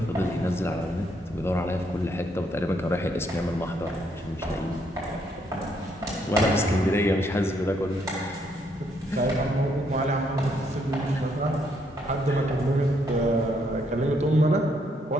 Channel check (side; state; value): both; normal; correlation 0.72